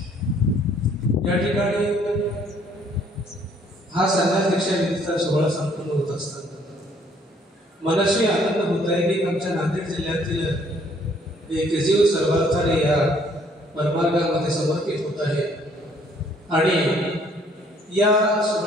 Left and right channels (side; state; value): both; normal; correlation 0.62